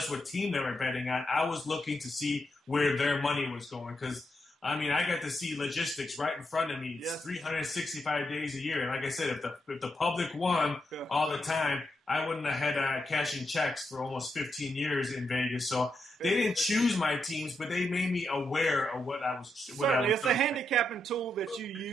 what team they were betting on. I was looking to see where their money was going because, I mean, I got to see logistics right in front of me. It's 365 days a year. And like I said, if the public won all the time, I wouldn't have had cashing checks for almost 15 years in Vegas. So they didn't choose my teams, but they made me aware of what I was. Certainly, it's a handicapping tool that you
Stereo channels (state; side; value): normal; both; correlation 0.83